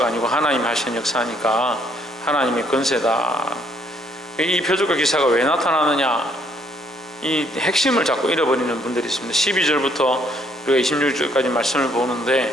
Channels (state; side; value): normal; both; correlation 0.67